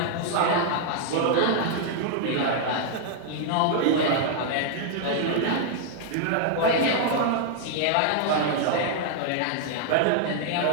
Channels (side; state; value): both; different; correlation -0.01